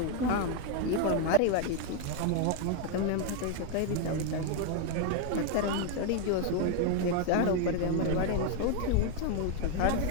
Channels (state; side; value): different; both; correlation 0.01